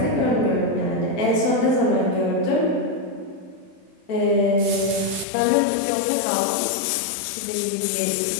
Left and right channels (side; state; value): right; drops out; at 5.2 s